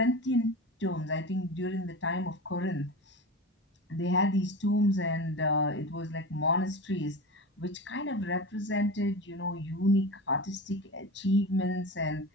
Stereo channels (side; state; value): both; normal; correlation 0.28